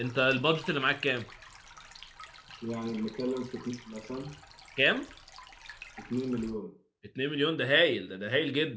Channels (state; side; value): identical; both; correlation 1.00